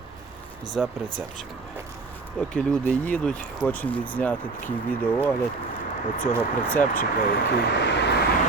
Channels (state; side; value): quieter; left; 3.9 dB